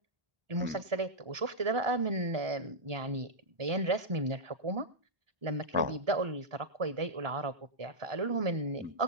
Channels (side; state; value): left; late; 1.2 ms